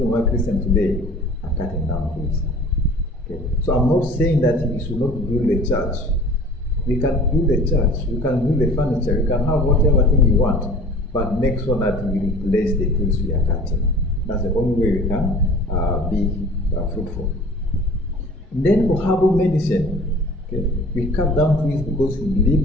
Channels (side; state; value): both; normal; correlation 0.45